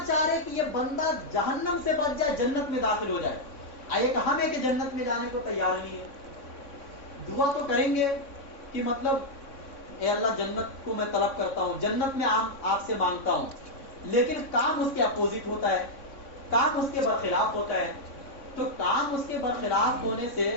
چاہ رہے کہ یہ بندہ جہنم سے بچ جائے, جنت میں داخل ہو جائے. ایک ہم ہے کہ جنت میں جانے کو تیار نہیں ہے. دعا تو کریں گے کہ مطلب اے اللہ جنت کو میں طلب کرتا ہوں, جنت میں آپ سے مانگتا ہوں, لیکن کام اس کے اپوزٹ ہوتا ہے, کام اس کے برخلاف ہوتا ہے. تو کام اس کے برخلاف ہونے سے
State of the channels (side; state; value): right; late; 3.6 ms